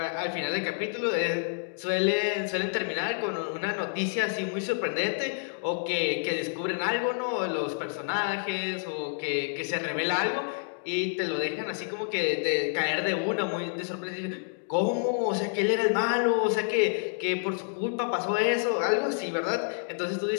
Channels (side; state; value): right; silent; digital silence